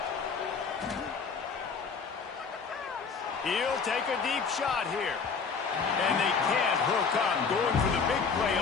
He'll take a deep shot here. And they can't hook up. Going for the big play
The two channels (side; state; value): right; quieter; 5.4 dB